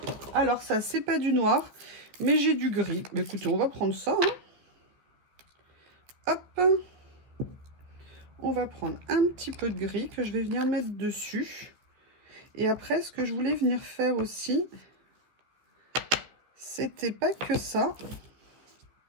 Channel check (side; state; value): left; late; 14 ms